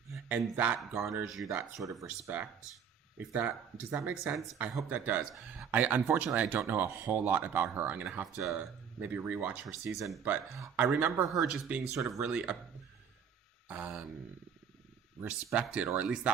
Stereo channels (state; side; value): quieter; left; 7.5 dB